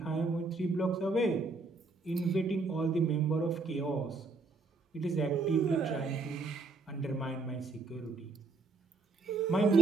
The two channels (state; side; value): quieter; left; 3.8 dB